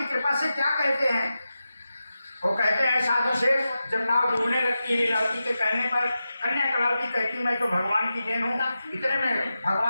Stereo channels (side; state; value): both; inverted; correlation -0.91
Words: कृपा से क्या कहते हैं? वो कहते हैं साधु से जब नाव डूबने लगती है, लीलावती के कहने पर कन्या करावती कहती मैं तो भगवान की देन हूँ। इतने में